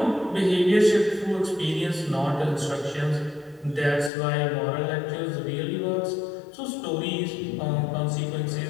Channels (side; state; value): right; drops out; at 4.1 s